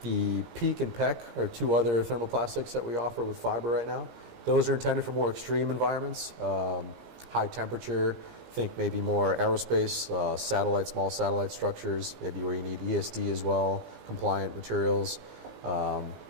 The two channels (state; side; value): late; left; 17 ms